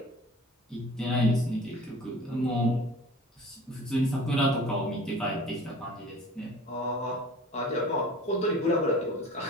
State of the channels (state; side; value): normal; both; correlation 0.43